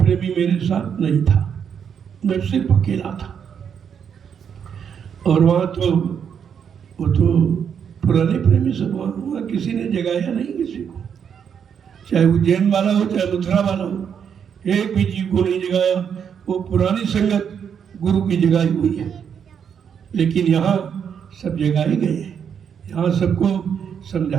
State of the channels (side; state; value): left; quieter; 7.7 dB